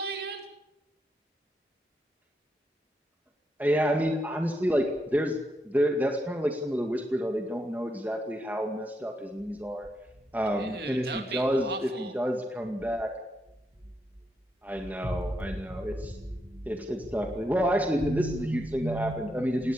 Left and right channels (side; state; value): both; normal; correlation 0.81